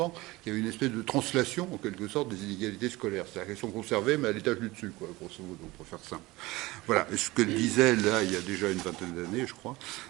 qu'il y avait une espèce de translation, en quelque sorte, des inégalités scolaires. C'est-à-dire qu'elles sont conservées, mais à l'étage du dessus, quoi, grosso modo, pour faire simple. Voilà, et ce qu'elle disait, là, il y a déjà une vingtaine d'années, je crois,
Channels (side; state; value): left; quieter; 20.5 dB